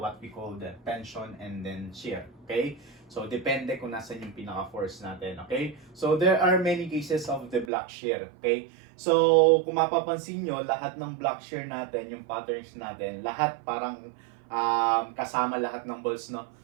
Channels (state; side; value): drops out; left; at 7.7 s